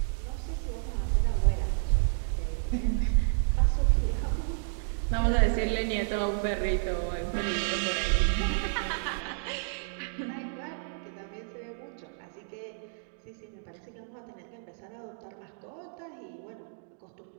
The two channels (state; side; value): silent; left; digital silence